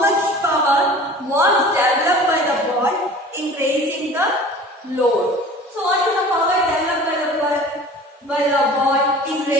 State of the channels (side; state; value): both; normal; correlation 0.43